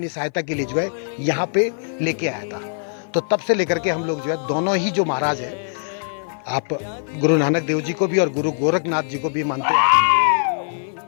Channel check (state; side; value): silent; right; 56 dB below the other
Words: सहायता के लिए जो है यहाँ पे लेके आया था। तो तब से लेकर के हम लोग जो है दोनों ही जो महाराज है, आप गुरु नानक देव जी को भी और गुरु गोरखनाथ जी को भी मानते